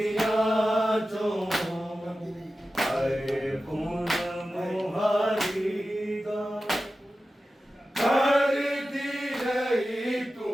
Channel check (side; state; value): both; normal; correlation 0.94